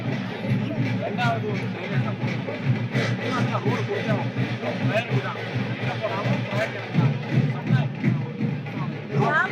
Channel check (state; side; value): identical; both; correlation 1.00